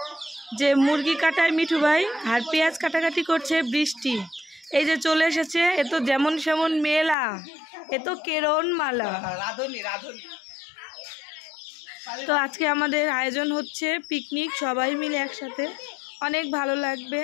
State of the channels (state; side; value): drops out; right; at 7.2 s